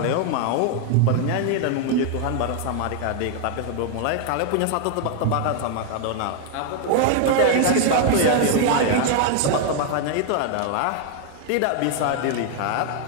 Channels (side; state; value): both; different; correlation 0.00